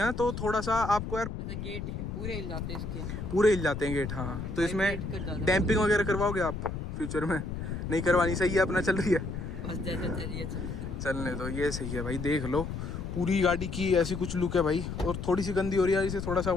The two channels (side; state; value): left; noise; rumble, 6 dB below the sound